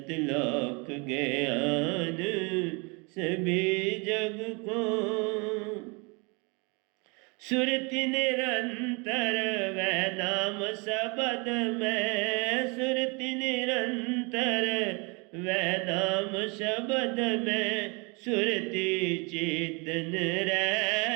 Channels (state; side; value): quieter; left; 30.4 dB